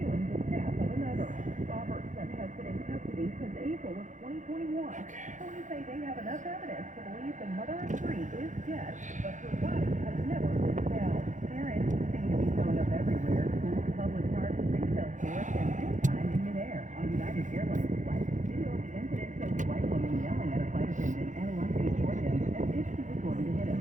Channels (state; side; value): late; left; 0.36 ms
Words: the death of another. Robertson has been in custody since April of 2021. Police say they have enough evidence to believe the mother of three is dead, but her body has never been found. Parents seem to be showing up everywhere. Schools, public parks, retail stores, and anytime in midair. On United Airlines flight, video of the incident shows a white woman yelling at a flight attendant at a Westley, Georgia, as if she was going to hit him.